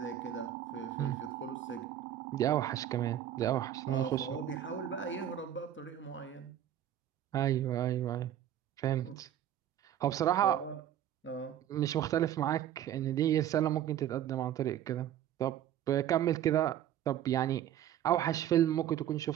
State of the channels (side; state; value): left; quieter; 11.1 dB